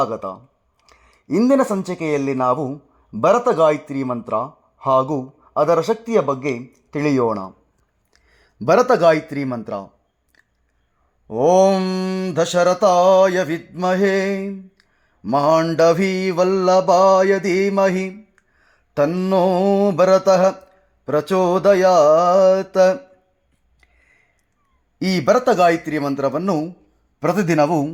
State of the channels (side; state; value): both; identical; correlation 1.00